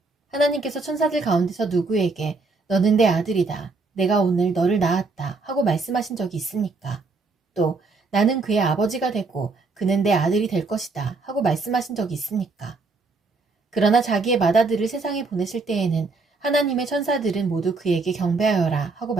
하나님께서 천사들 가운데서 누구에게 너는 내 아들이다. 내가 오늘 너를 낳았다. 하고 말씀하신 적이 있습니까? 또 나는 그의 아버지가 되고 그는 내 아들이 될 것이다. 하고 말씀하신 적이 있습니까? 그러나 자기의 맏아들을 세상에 보내실 때에는 하나님의 천사들은 모두 그에게 경배하여라 하고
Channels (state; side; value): quieter; left; 3.9 dB